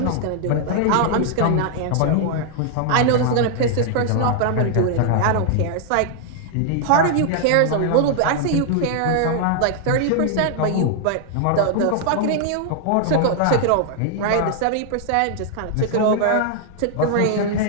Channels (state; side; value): different; both; correlation 0.00